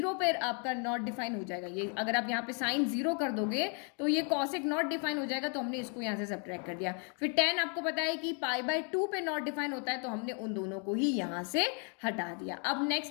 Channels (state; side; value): quieter; right; 38.4 dB